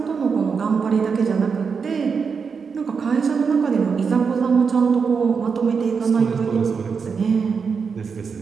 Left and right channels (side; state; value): left; quieter; 5.7 dB